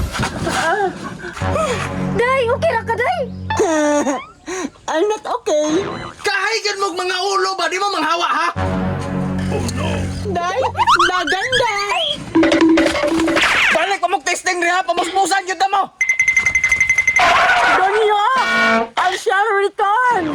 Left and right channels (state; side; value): identical; both; correlation 1.00